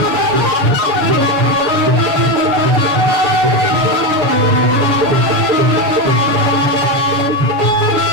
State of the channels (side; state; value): left; late; 6.9 ms